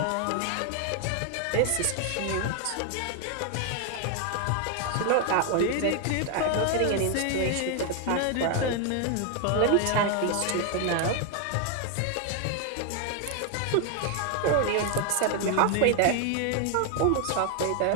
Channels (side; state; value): both; different; correlation 0.01